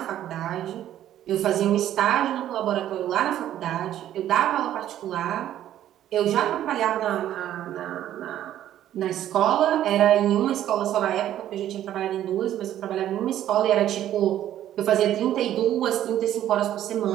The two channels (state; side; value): quieter; left; 11.9 dB